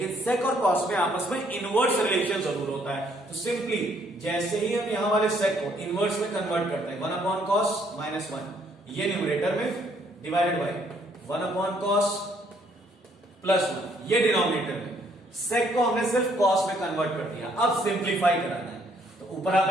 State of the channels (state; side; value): normal; both; correlation 0.67